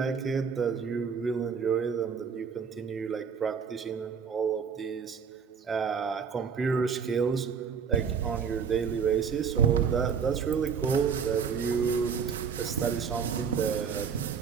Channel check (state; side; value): quieter; left; 6.5 dB